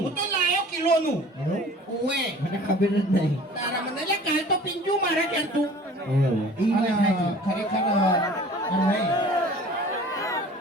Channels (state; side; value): normal; both; correlation 0.46